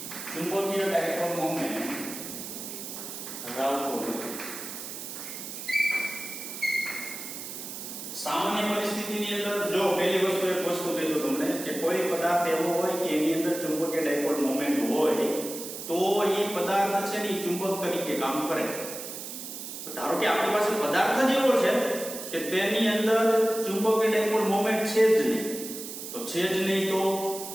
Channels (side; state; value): right; noise; hiss, 9 dB below the sound